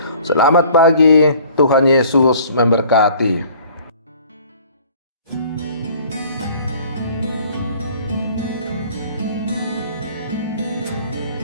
Selamat pagi, Tuhan Yesus memberkati.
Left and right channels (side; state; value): both; inverted; correlation -0.52